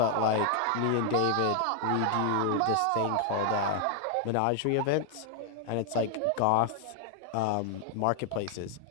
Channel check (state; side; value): different; both; correlation 0.00